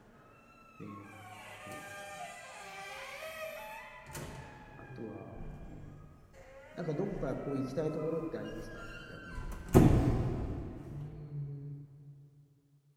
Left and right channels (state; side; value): identical; both; correlation 1.00